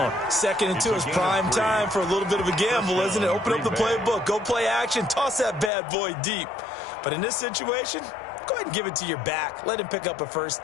2nd and 2 is prime time for a little bit of a gamble, isn't it? Open up the playbook. Go play action. Toss that bad boy deep. But in this situation, go ahead and give it to your back. Let him pick up a 1st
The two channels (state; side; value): drops out; right; at 5.7 s